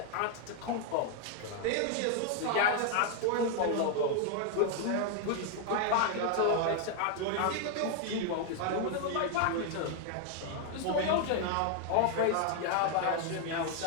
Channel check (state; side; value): different; both; correlation 0.00